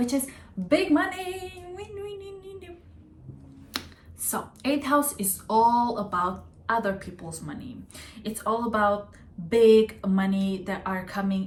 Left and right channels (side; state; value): both; identical; correlation 1.00